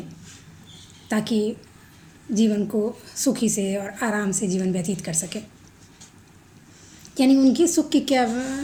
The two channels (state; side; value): identical; both; correlation 1.00